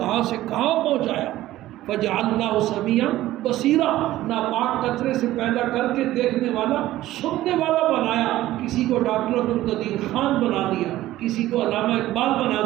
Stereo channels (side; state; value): left; quieter; 15.2 dB